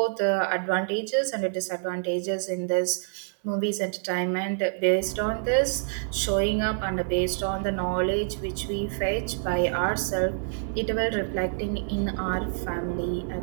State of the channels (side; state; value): left; silent; digital silence